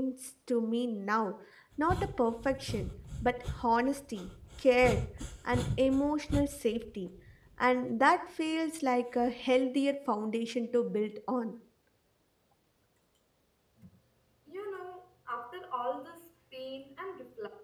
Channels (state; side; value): identical; both; correlation 1.00